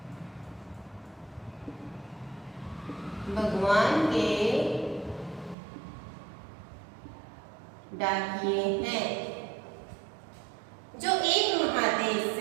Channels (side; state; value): left; drops out; at 5.6 s